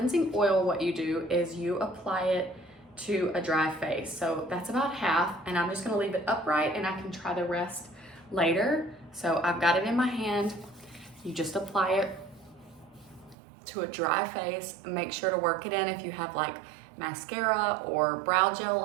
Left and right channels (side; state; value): left; drops out; at 13.4 s